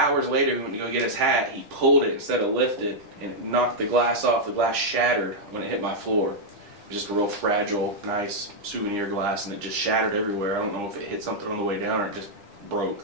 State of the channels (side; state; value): left; late; 9.9 ms